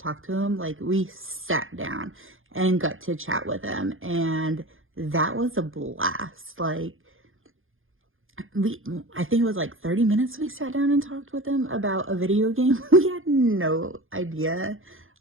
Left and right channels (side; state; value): left; late; 0.59 ms